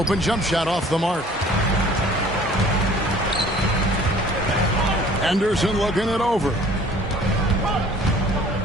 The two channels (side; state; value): both; normal; correlation 0.52